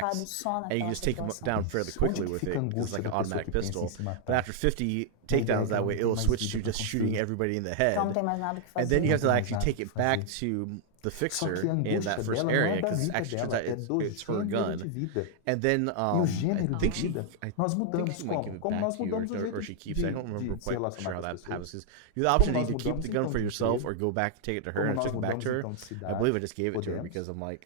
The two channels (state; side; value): different; both; correlation 0.00